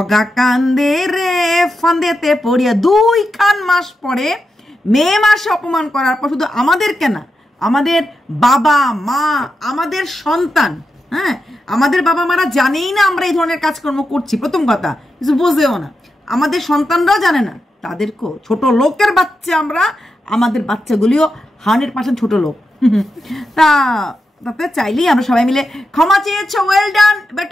কান্দে রে ফান্দেতে পড়িয়া 2 মাস পরে মে মাসে অপমান করার পর শুধু আমাদের কেনা, আমাদের বাবা মা, আমাদের সন্তান, হ্যাঁ আমাদের বাবা মারা জানেই না আমরা এই ধরনের কাজকর্ম করছি, প্রথম কথা কিছু বোঝেও না, আমাদের সন্তানরাও জানে না, তাদেরকেও ছোট লোকের বাচ্চা আমরা, আমাদের বাচ্চাগুলিও 100% ছোট লোক। তাতে চাইলেই আমরা সবাই মিলে ক্ষমা চেয়েছো, ওয়েল ডান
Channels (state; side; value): normal; both; correlation 0.87